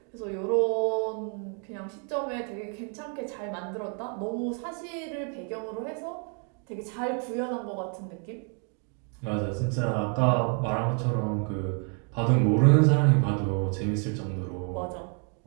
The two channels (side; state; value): left; quieter; 39.2 dB